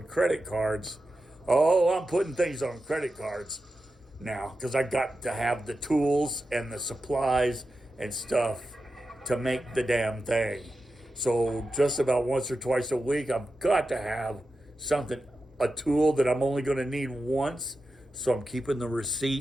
credit cards. Oh, I'm putting things on credit cards now because I got to have the tools and the supplies and stuff to make the damn thing. So just about once or twice a week, I've got to have something, a tool that I'm only going to need once. So I'm keeping the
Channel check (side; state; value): both; normal; correlation 0.91